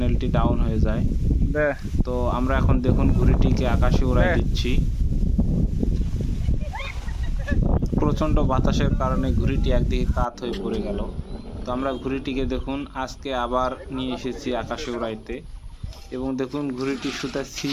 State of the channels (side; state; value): both; identical; correlation 1.00